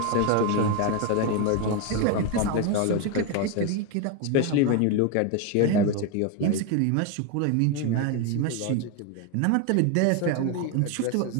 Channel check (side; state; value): both; different; correlation 0.01